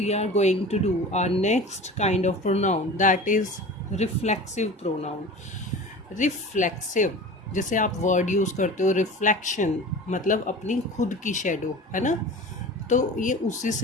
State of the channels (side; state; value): both; normal; correlation 0.36